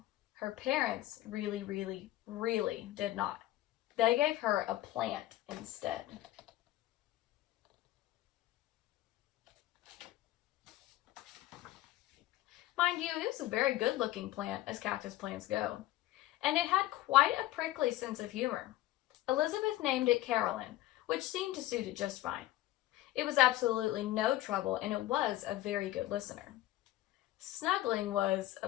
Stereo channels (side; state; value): right; quieter; 15.6 dB